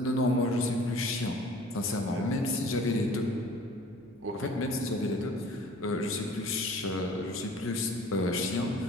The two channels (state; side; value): noise; right; hum, 30 dB below the sound